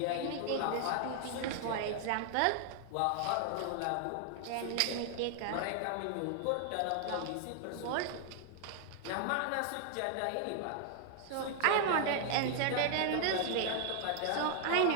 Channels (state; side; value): different; both; correlation 0.00